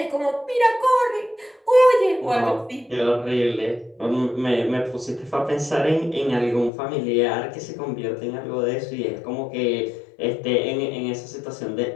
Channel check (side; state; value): right; drops out; at 6.7 s